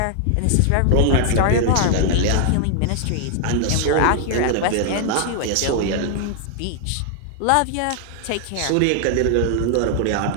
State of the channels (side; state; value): both; different; correlation 0.00